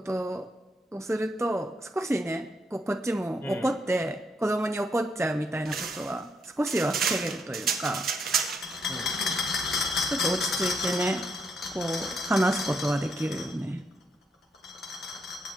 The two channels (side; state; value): both; normal; correlation 0.76